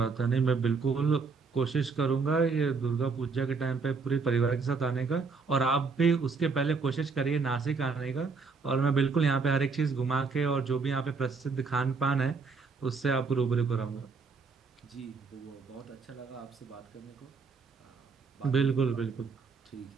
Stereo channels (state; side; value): quieter; left; 4.7 dB